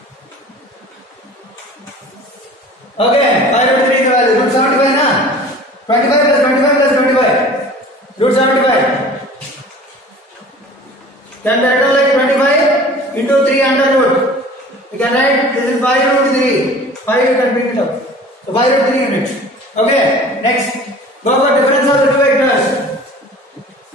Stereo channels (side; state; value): both; normal; correlation 0.44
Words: Okay, 5 root 3 is the value. Root 75 na? 25 plus 25 plus 25. Root 75. Can that go like 25 into 3 under root? You can write this is 5 root 3. 5 you can bring it up. So 5 root 3 units. Okay, next. Go for difference of the two vectors.